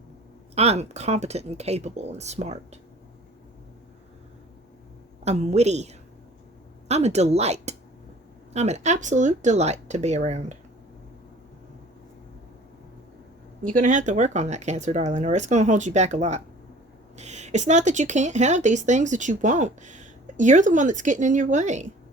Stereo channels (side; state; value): both; normal; correlation 0.48